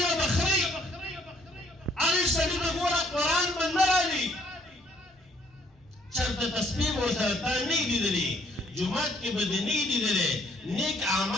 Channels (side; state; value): both; normal; correlation 0.64